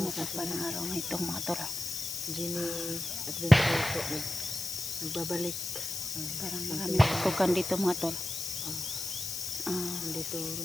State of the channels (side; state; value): left; noise; hiss, 4 dB below the sound